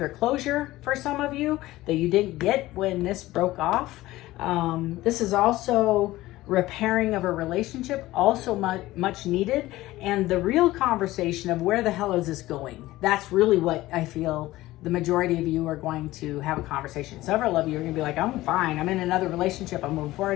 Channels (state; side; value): quieter; right; 17.2 dB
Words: closure for some of you that you didn't get when this broke off. This is also repairing of a relationship, also much needed. And the real conversation of where the hell is this going? That's really what I feel the majority of you are going to have a conversation. Several of you are going to be like, I'm fine. I'm in another relationship. I'm moving